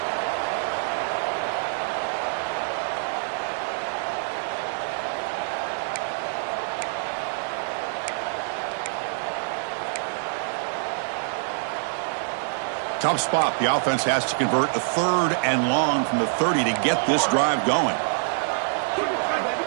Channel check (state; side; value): silent; left; digital silence